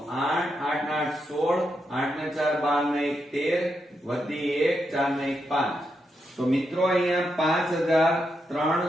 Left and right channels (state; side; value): normal; both; correlation 0.83